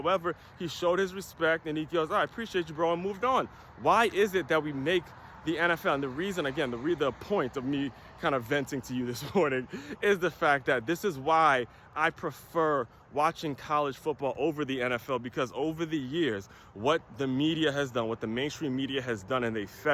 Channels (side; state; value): both; identical; correlation 1.00